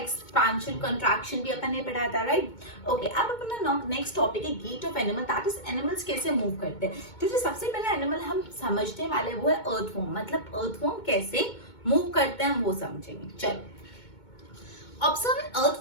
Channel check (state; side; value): late; right; 2.2 ms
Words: कंट्रैक्शन भी अपन ने पढ़ा था, राइट. ओके, अब अपना नेक्स्ट टॉपिक है gait of animal, that is animals कैसे मूव करते हैं. तो जो सबसे पहला एनिमल हम समझने वाले वो है अर्थवॉर्म. मतलब अर्थवॉर्म कैसे मूव करते हैं वो समझेंगे. चलो, observe an